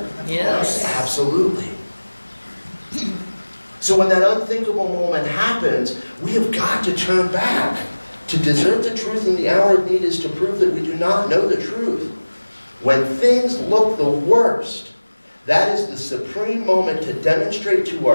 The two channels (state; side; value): inverted; both; correlation -1.00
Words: Yes. Absolutely. So when that unthinkable moment happens, we have got to turn back. To desert the truth in the hour of need is to prove that we do not know the truth. When things look the worst, that is the supreme moment to demonstrate to